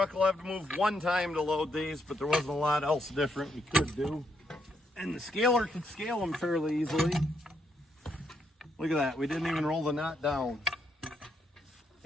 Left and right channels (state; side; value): normal; both; correlation 0.76